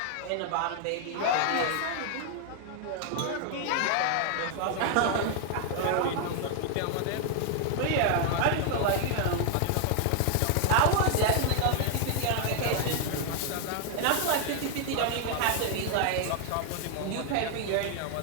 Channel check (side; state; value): both; different; correlation 0.00